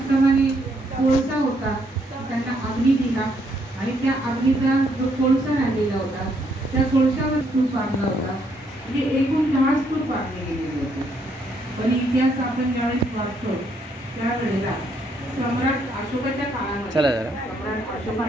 कोळसा होता त्यांना अग्नी दिला आणि त्या अग्नीचा जो कोळसा राहिलेला होता त्या कोळशावर स्तूप बांधला होता. म्हणजे एकूण 10 स्तूप बांधले गेलेले होते. पण इतिहास आपण ज्यावेळेस वाचतो त्यावेळेला सम्राट अशोकाच्या काळामध्ये सम्राट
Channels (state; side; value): normal; both; correlation 0.72